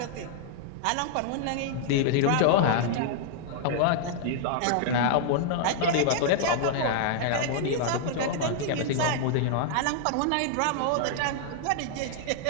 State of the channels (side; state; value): both; different; correlation -0.01